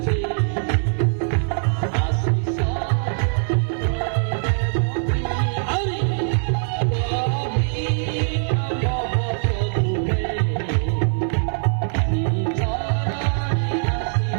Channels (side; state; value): left; silent; digital silence